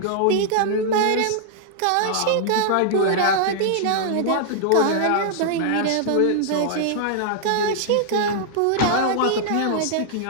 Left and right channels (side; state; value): both; different; correlation -0.01